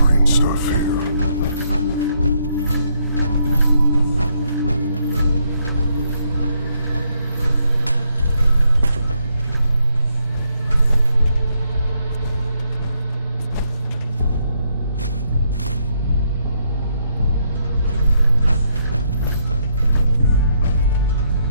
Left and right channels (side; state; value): both; inverted; correlation -0.75